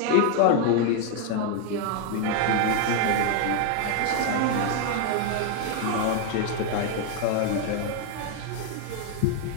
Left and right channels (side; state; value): both; different; correlation 0.00